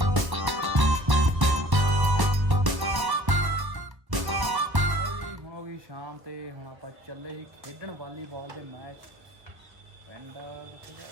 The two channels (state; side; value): late; left; 1.1 ms